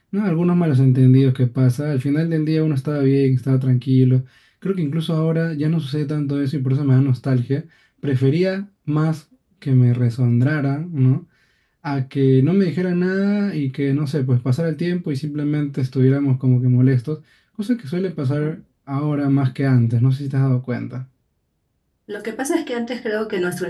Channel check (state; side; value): identical; both; correlation 1.00